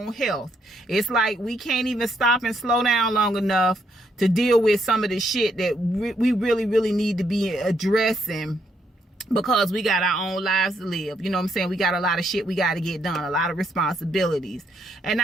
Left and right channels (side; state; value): both; normal; correlation 0.74